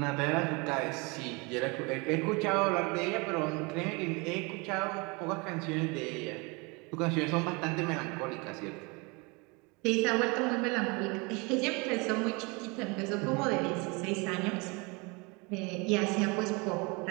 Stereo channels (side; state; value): left; quieter; 28.5 dB